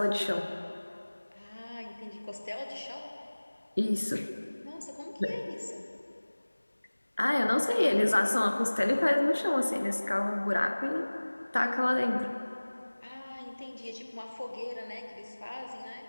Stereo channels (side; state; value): both; inverted; correlation -1.00